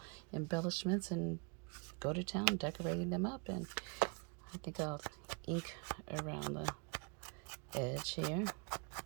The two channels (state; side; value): quieter; left; 34.6 dB